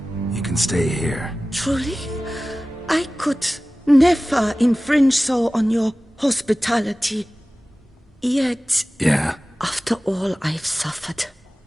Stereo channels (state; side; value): normal; both; correlation 0.97